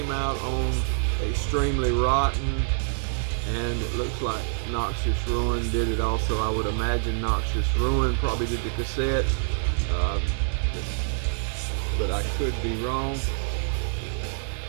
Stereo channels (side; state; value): left; silent; digital silence